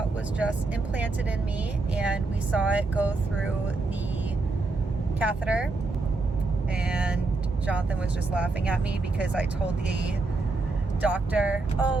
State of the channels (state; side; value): quieter; left; 3.4 dB